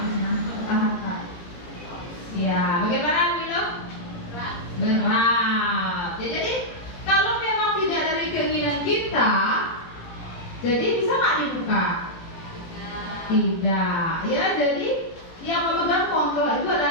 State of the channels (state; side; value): late; right; 17 ms